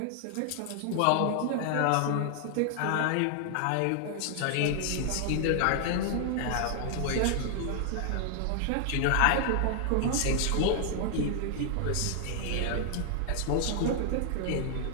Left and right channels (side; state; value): both; different; correlation 0.00